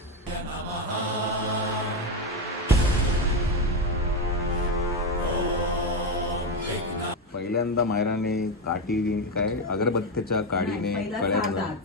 पहिल्यांदा मायराने काठी काय अगरबत्तीच्या काडीने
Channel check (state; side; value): normal; both; correlation 0.11